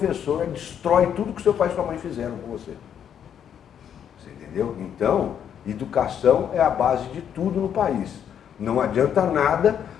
destrói tudo que seu pai e sua mãe fizeram com você. Você entendeu? Então, educação é a base de tudo no país. Não adianta nada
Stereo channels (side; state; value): right; quieter; 8.8 dB